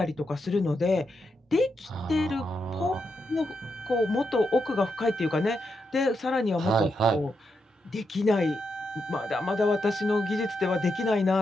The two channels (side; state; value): both; normal; correlation 0.84